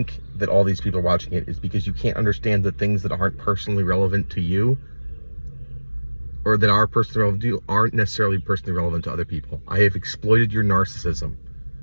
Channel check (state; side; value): inverted; both; correlation -1.00